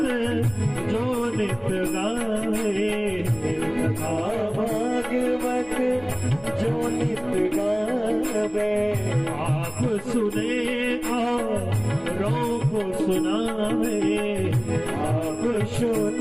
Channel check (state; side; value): noise; left; hum, 26 dB below the sound